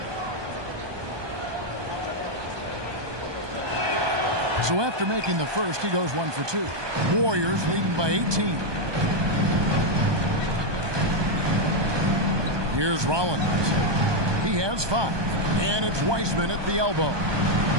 So after making the first, he goes 1 for 2. Warriors leading by 18. Here's Rollins. He has 5. And it's Weissman at the elbow.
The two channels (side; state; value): left; late; 1.2 ms